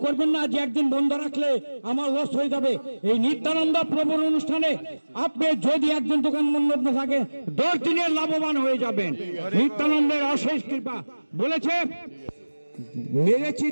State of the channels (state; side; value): inverted; both; correlation -1.00